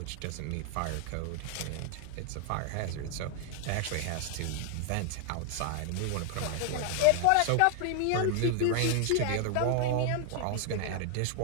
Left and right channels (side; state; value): both; different; correlation 0.00